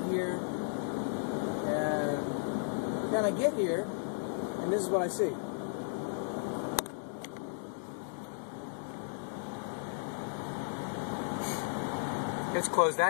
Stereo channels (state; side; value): silent; right; digital silence